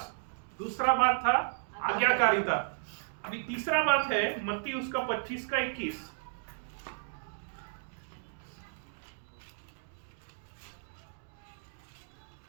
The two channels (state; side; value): silent; left; digital silence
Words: दूसरा बात था आज्ञाकारिता। अभी तीसरा बात है मत्ती उसका 25 का 21।